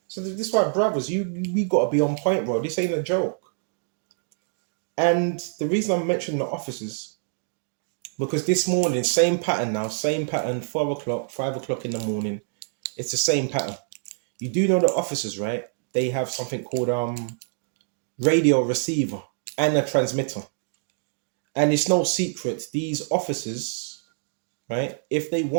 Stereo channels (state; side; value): silent; left; digital silence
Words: So this is why, brothers, we gotta be on point, bro. This ain't a joke. And the reason I'm mentioning the officers, because this morning, same pattern now, same pattern, 4 o'clock, 5 o'clock in the morning. It's the same pattern. You do know the officers, right? They have something called radio receiver and a transmitter. And it's no secret, these officers, right, if they